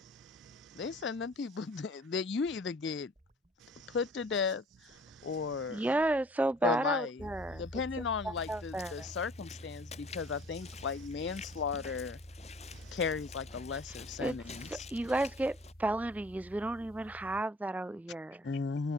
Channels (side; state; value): both; normal; correlation 0.51